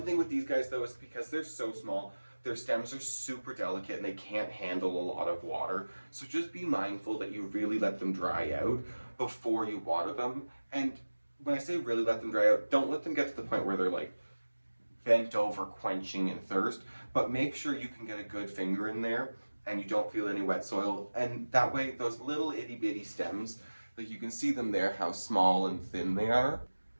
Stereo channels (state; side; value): inverted; both; correlation -1.00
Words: thing with these guys though is because they're so small, their stems are super delicate and they can't handle a lot of water. So just be mindful that you really let them dry out before you water them. And when I say really let them dry out, don't let them get to the point where they're like bent over quenching in thirst, but make sure you can get a good finger in there and you don't feel any wet soil. And that way, those little itty bitty stems, like you can see them there, how small and thin they are.